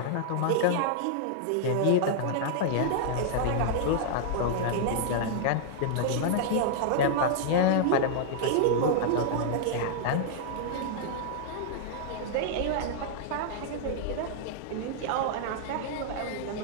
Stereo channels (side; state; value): both; different; correlation -0.01